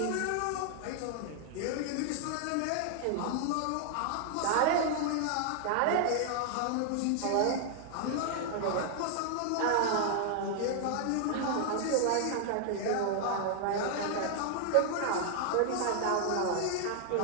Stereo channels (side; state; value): both; different; correlation -0.01